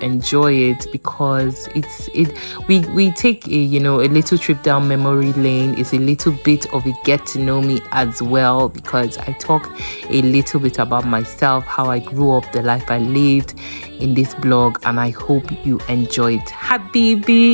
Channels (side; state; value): both; inverted; correlation -1.00